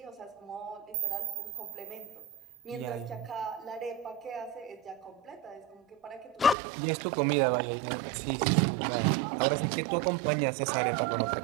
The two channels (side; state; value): left; drops out; at 6.6 s